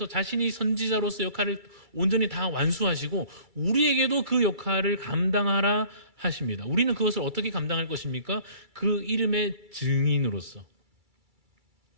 자신이 선지자로서 역할을 온전히 다 완수하시고 우리에게도 그 역할을 감당하라 하십니다. 우리는 그것을 어떻게 감당할 것입니까? 그 이름의 증인으로서,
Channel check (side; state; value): left; late; 2.3 ms